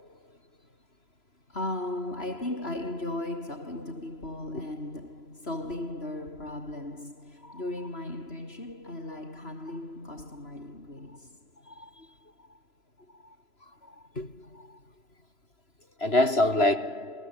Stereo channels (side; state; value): right; late; 3.0 ms